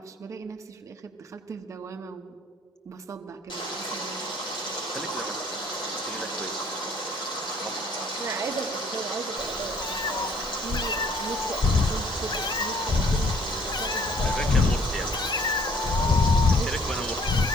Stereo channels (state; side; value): normal; both; correlation 0.59